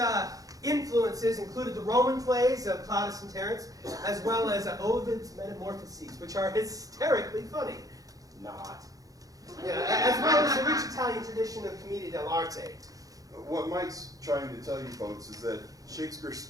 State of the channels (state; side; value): late; left; 0.17 ms